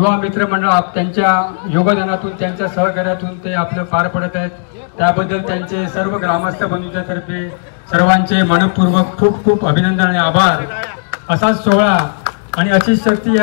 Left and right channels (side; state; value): right; silent; digital silence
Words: मित्र मंडळ त्यांच्या योगदानातून, त्यांच्या सहकार्यातून ते आपलं पार पडत आहेत. त्याबद्दल त्यांचे सर्व ग्रामस्थ बंधूंच्यातर्फे सर्वांचे मनपूर्वक खूप खूप अभिनंदन आणि आभार. असाच सोहळा आणि अशीच शक्ती